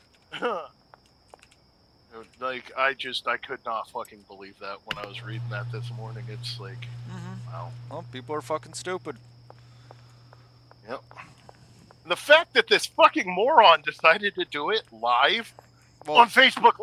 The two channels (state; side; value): identical; both; correlation 1.00